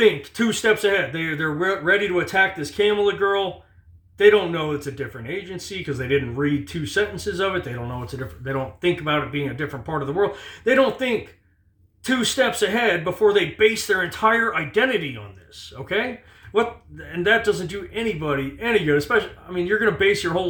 2 steps ahead. They're ready to attack this Kamila girl. They don't know it's a different agency because they didn't read 2 sentences of it. They don't know they don't think about it being a different part of the world. They don't think 2 steps ahead before they base their entire identity on this, okay? And that doesn't do anybody any good, especially, you're going to base your whole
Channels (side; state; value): both; identical; correlation 1.00